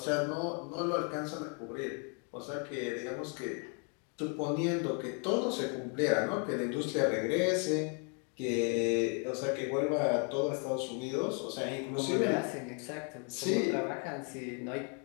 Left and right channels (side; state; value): right; quieter; 39.1 dB